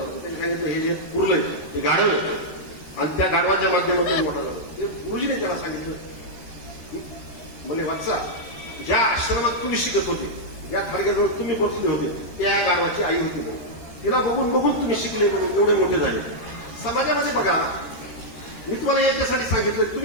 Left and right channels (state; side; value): late; right; 13 ms